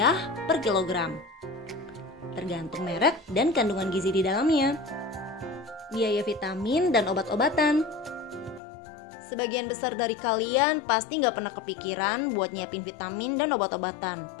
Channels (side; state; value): right; drops out; at 8.6 s